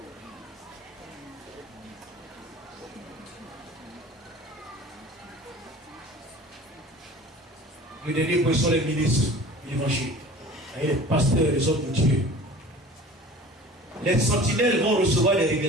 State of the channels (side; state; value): both; normal; correlation 0.43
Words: Le dernier point sont les ministres de l'évangile. Les pasteurs, les hommes de Dieu. Les sentinelles vont recevoir des